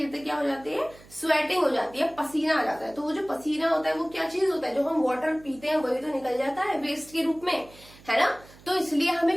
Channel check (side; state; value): right; noise; hum, 23 dB below the sound